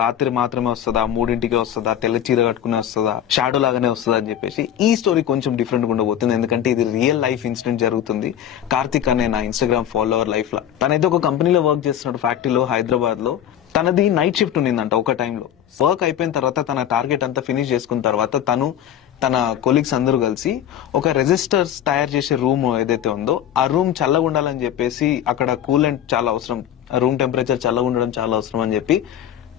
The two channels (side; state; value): right; quieter; 10.4 dB